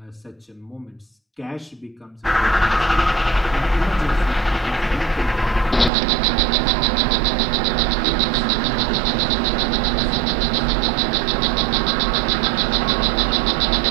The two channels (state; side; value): drops out; left; at 5.9 s